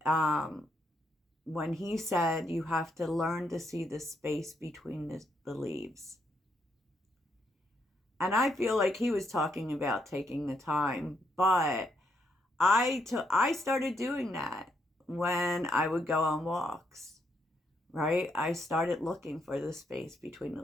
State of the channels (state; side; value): normal; both; correlation 0.77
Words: Um, when he said, you have to learn to see the space between the leaves. And I feel like he was talking about taking the time, but I started doing that when I would go on walks, right? I started looking for the space between the